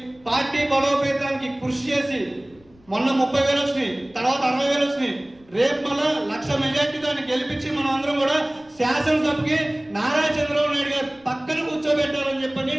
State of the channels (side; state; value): left; noise; rumble, 30 dB below the sound